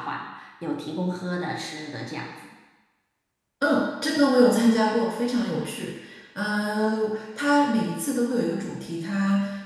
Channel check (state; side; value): identical; both; correlation 1.00